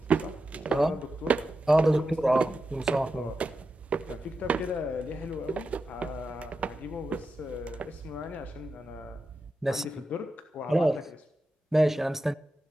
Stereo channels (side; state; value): both; normal; correlation 0.89